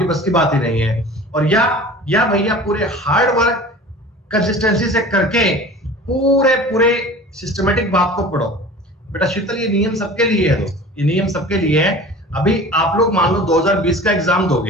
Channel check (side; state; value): both; normal; correlation 0.40